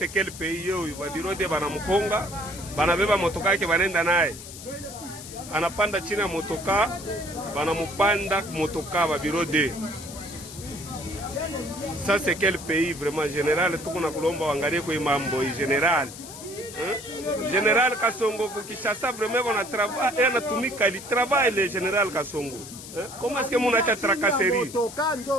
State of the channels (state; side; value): noise; left; hiss, 13 dB below the sound